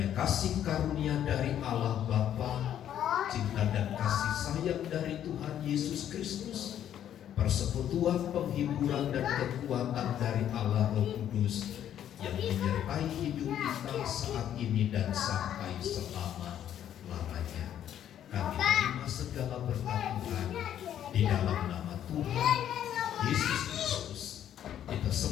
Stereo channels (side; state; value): right; quieter; 10.5 dB